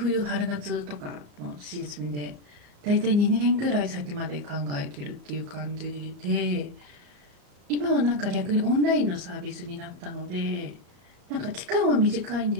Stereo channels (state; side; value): late; left; 34 ms